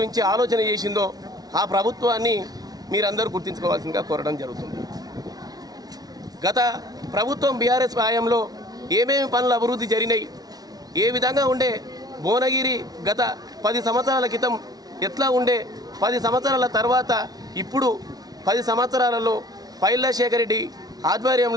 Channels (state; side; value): late; left; 0.19 ms